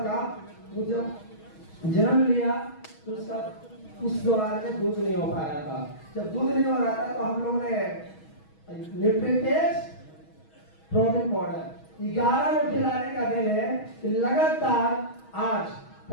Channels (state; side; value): late; right; 6.2 ms